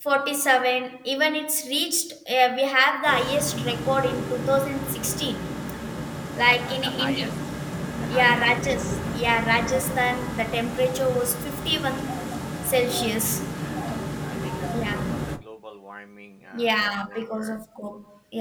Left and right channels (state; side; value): identical; both; correlation 1.00